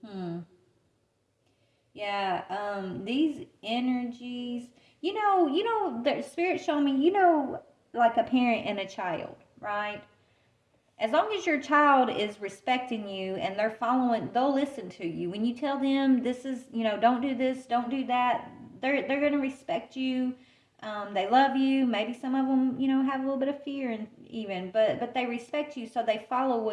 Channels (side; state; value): both; identical; correlation 1.00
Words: Yeah, these energies, the spirit showed me, like a parent and a child, right? As long as your child is respecting you and they're following, they'll listen to you. When you tell them this is, don't do this, don't do that, they're going to respect you. They love you. Maybe some of them, have a little bit of fear and but they respect you, so they follow